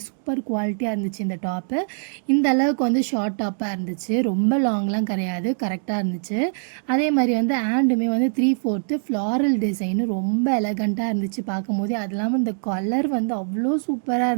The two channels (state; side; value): silent; left; digital silence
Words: சூப்பர் குவாலிட்டியாக இருந்துச்சு இந்த டாப்பு. இந்த அளவுக்கு வந்து ஷார்ட் டாப்பாக இருந்துச்சு, ரொம்ப லாங்லாம் கிடையாது, கரெக்டாக இருந்துச்சு. அதே மாதிரி வந்து ஹேண்டுமே வந்து 3/4 ஃப்ளாரல் டிசைனு ரொம்ப எலகண்ட்டாக இருந்துச்சு பார்க்கும்போதே. அது இல்லாமல் இந்த கலர் வந்து அவ்வளோ சூப்பராக